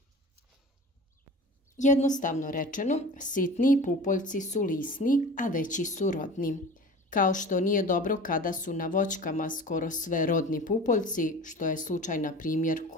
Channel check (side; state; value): both; normal; correlation 0.38